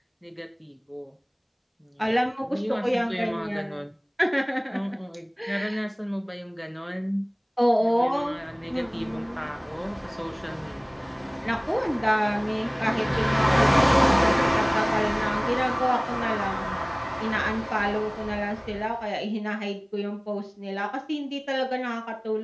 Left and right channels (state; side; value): identical; both; correlation 1.00